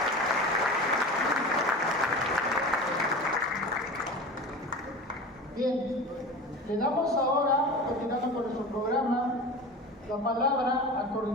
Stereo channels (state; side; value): normal; both; correlation 0.32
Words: Bien, le damos ahora, continuando con nuestro programa, la palabra al